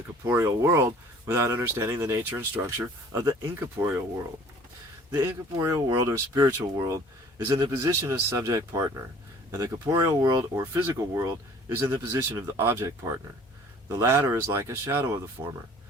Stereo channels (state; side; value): normal; both; correlation 0.51